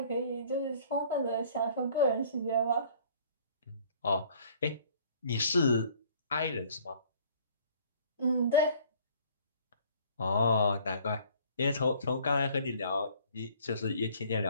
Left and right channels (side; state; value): both; inverted; correlation -0.55